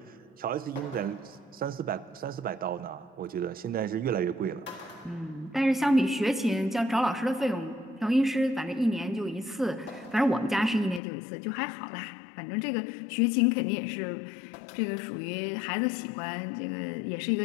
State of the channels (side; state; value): right; drops out; at 11.0 s